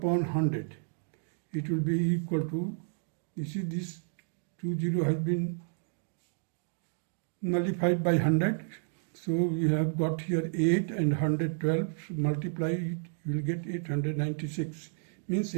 100. It will be equal to, you see this 20 has been nullified by 100. So we have got here 8 and 112, so multiply it, you will get 896. Means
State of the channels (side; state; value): left; silent; digital silence